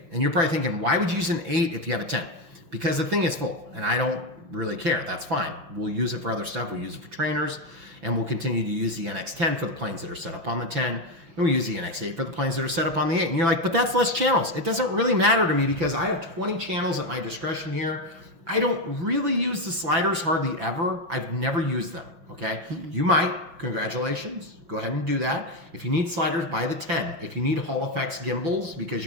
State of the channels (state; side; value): late; left; 6.0 ms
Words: And you're probably thinking, why would you use an 8 if you have a 10? Because the thing is full, and I don't really care, that's fine. We'll use it for other stuff, we'll use it for trainers, and we'll continue to use the NX10 for the planes that are set up on the 10, and we'll use the NX8 for the planes that are set up on the 8. And you're like, but that's less channels. It doesn't really matter to me because I have 20 channels at my discretion here. I don't really use the sliders hardly ever. I've never used them, okay? You might, congratulations, go ahead and do that. If you need sliders, buy the 10. If you need Hall Effects gimbals because